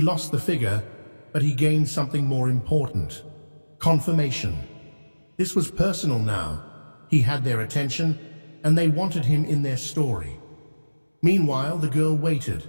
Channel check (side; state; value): both; inverted; correlation -1.00